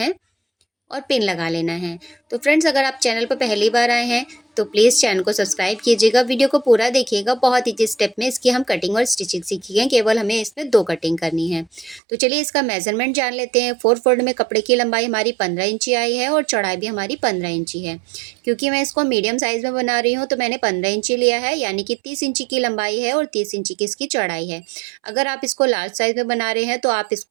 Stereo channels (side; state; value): left; drops out; at 12.0 s